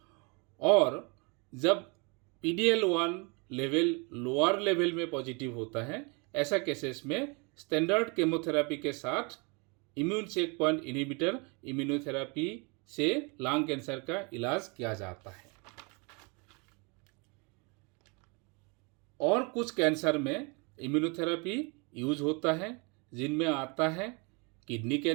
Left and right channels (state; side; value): quieter; left; 31.1 dB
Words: और जब PDL1 लेवल लोअर लेवल में पॉजिटिव होता है, ऐसा केसेस में स्टैंडर्ड केमोथेरेपी के साथ immune check point inhibitor immunotherapy से लंग कैंसर का इलाज किया जाता है। और कुछ कैंसर में इम्यूनोथेरेपी यूज होता है, जिनमें आता है kidney